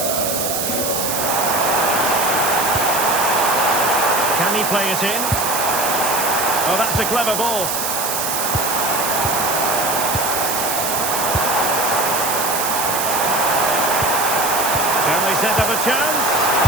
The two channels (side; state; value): right; noise; hiss, 1 dB below the sound